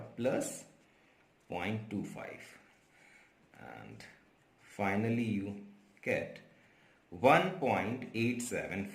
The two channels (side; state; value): both; identical; correlation 1.00